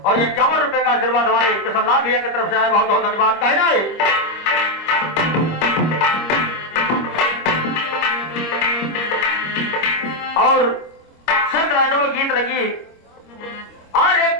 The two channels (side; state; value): right; late; 25 ms